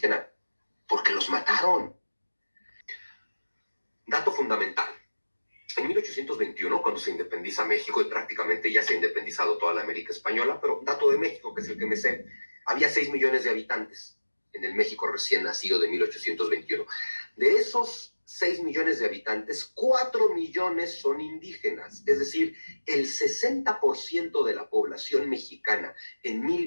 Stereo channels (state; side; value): inverted; both; correlation -1.00